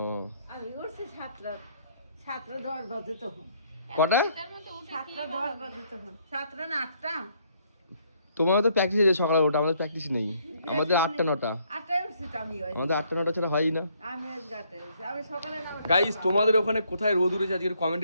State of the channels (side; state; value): both; inverted; correlation -0.68